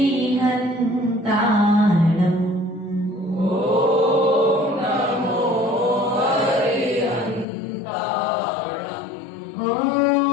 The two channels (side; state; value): right; drops out; at 7.5 s